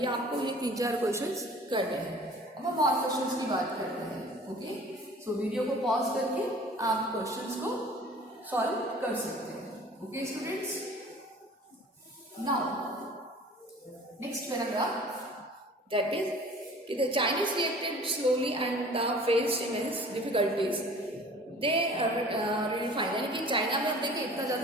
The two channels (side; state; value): both; normal; correlation 0.47